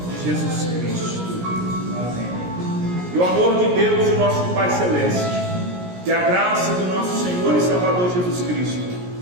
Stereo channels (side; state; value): left; late; 17 ms